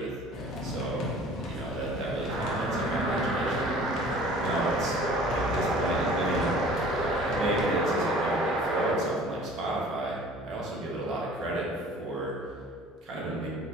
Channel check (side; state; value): both; normal; correlation 0.48